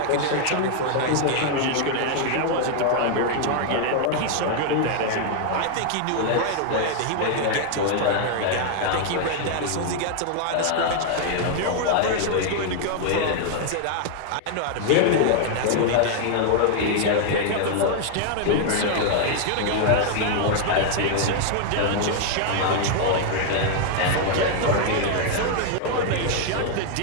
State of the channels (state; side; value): different; both; correlation 0.00